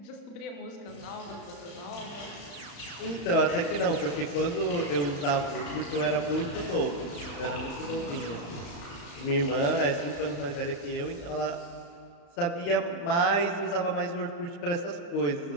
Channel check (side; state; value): right; late; 35 ms